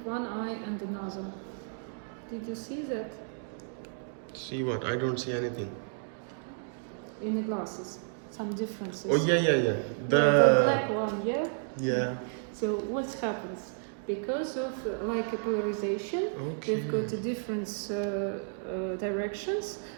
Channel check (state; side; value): silent; left; digital silence